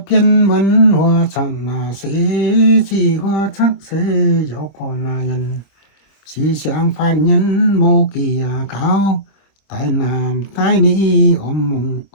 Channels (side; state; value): right; late; 25 ms